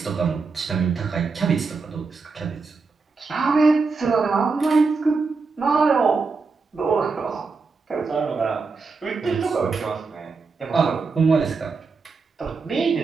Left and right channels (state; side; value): quieter; left; 4.5 dB